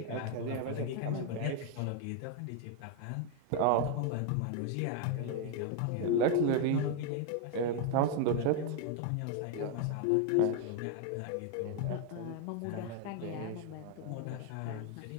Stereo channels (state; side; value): different; both; correlation 0.00